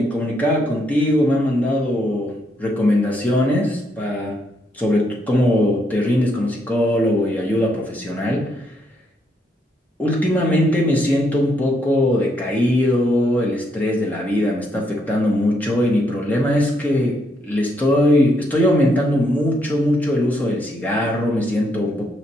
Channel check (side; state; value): both; normal; correlation 0.75